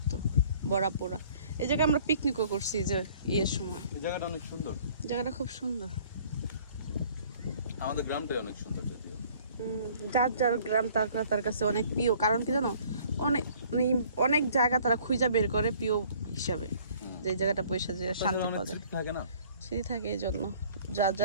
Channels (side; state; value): both; inverted; correlation -0.55